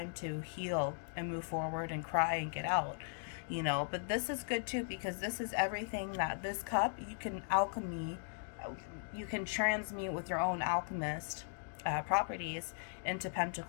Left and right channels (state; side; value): silent; right; digital silence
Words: to heal and move forward and cry and get out, you know. But this is good too, because this is everything that this cup, you can alchemy, you can transmute with your own alchemist properties into